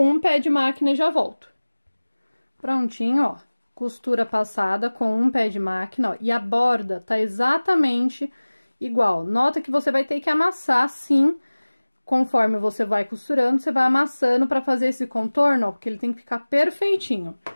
um pé de máquina e já volto. Prontinho, ó. Costura passada com um pé de máquina, ó. E a borda tá exatamente igual. Nota que você vai ter que amassar, sim. Conforme você vai costurando, você vai amassando para fazer esse contorno, ó, porque ele tem que ficar perfeitinho.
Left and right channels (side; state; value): both; inverted; correlation -1.00